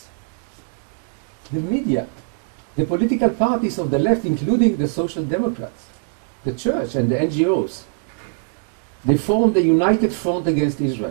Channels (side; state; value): left; quieter; 38.3 dB